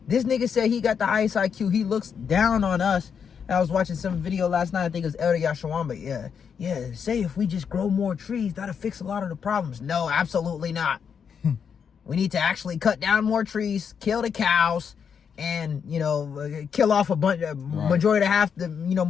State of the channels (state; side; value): quieter; right; 7.0 dB